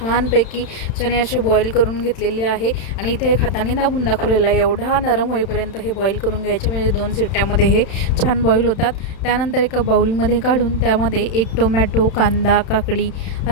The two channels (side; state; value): right; late; 31 ms